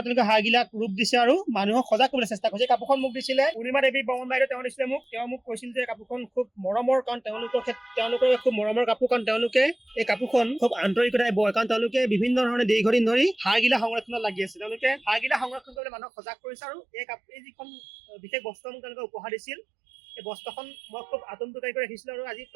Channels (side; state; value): left; drops out; at 15.8 s